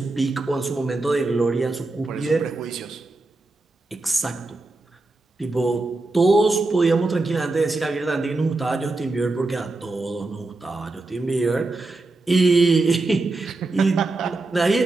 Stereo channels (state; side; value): quieter; left; 3.2 dB